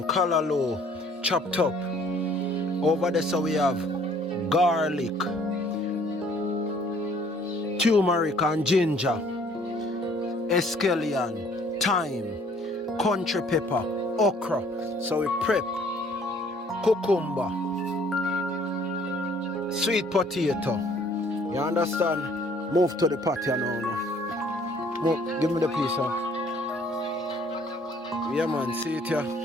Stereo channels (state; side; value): normal; both; correlation 0.59